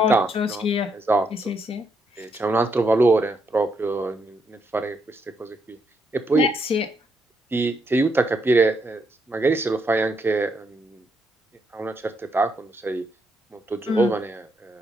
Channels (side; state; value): both; normal; correlation 0.77